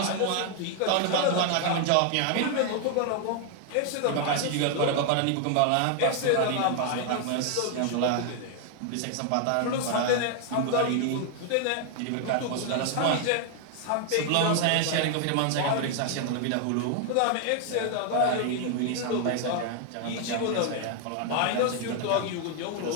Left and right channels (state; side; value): different; both; correlation 0.00